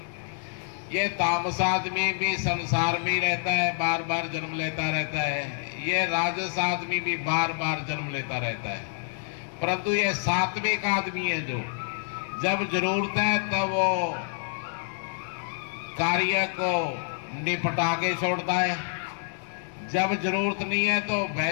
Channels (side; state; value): right; silent; digital silence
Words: ये तामस आदमी भी संसार में ही रहता है, बार बार जन्म लेता रहता है। ये राजस आदमी भी बार बार जन्म लेता रहता है। परंतु ये सात्विक आदमी है जो जब जरूरत है तब वो कार्य को निपटा के छोड़ता है, जब जरूरत नहीं है तो